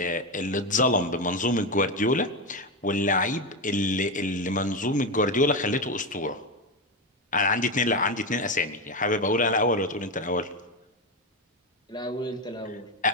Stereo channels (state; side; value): normal; both; correlation 0.13